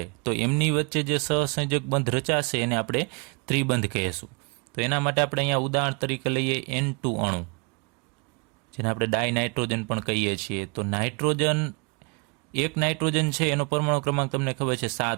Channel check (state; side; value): quieter; left; 32.3 dB